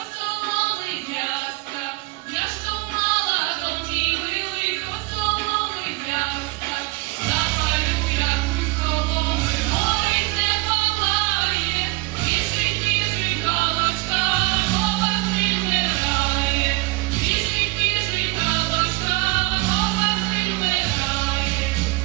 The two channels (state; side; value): quieter; left; 24.5 dB